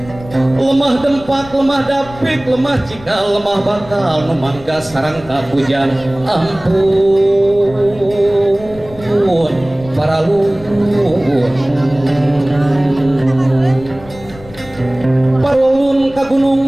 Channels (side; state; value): left; noise; rumble, 19 dB below the sound